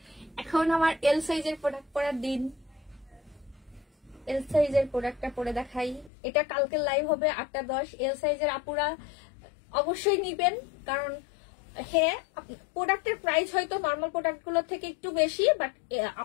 এখন আমার এল সাইজের প্রোডাক্ট পরার দিন। এল সাইজের প্রোডাক্টটা পরে দেখাই। এটা কালকে লাইভ হবে 8:10। এল সাইজের আপুরা অবশ্যই নিবেন, কারণ হ্যাঁ প্রোডাক্টের প্রাইস হয়তো নর্মাল প্রোডাক্ট গুলোর থেকে একটু বেশি, বাট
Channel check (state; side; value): drops out; right; at 6.1 s